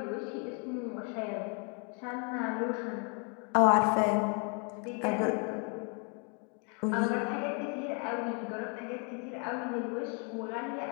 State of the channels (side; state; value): right; quieter; 37.3 dB